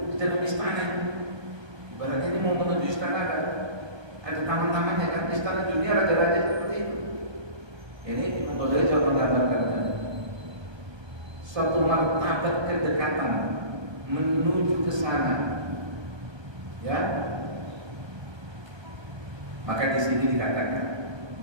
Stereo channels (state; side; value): late; left; 1.3 ms